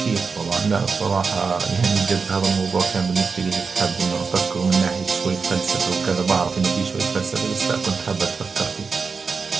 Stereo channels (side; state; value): left; quieter; 5.1 dB